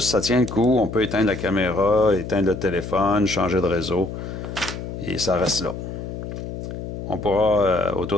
ça tient le coup. On peut éteindre la caméra, éteindre le téléphone, changer de réseau. Et ça reste là. On pourra,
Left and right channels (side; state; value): left; noise; hum, 8 dB below the sound